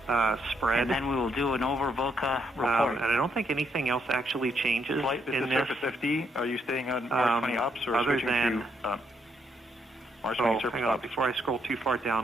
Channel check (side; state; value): both; normal; correlation 0.75